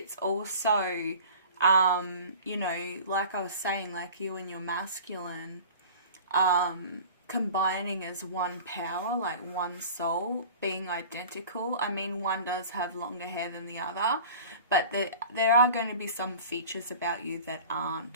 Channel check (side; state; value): both; inverted; correlation -0.41